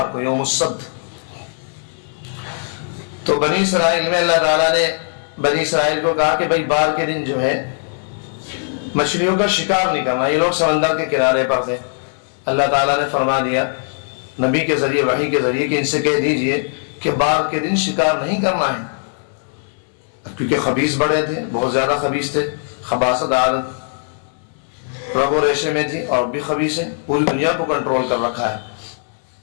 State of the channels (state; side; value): silent; right; 66 dB below the other